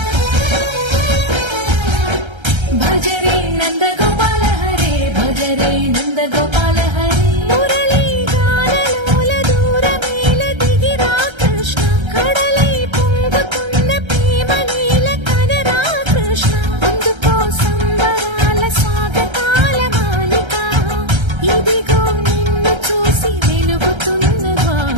భజరే నందగోపాల హరే భజరే నందగోపాల హరే మురళీ గానలోల దూరమేల దిగిరా కృష్ణ కడలై పొంగుతున్న ప్రేమ నీల కనరా కృష్ణ అందుకో సంబరాల స్వాగతాల మాలిక ఇదిగో నిన్ను చూసి వెలుగుతున్న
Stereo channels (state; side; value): late; left; 1.3 ms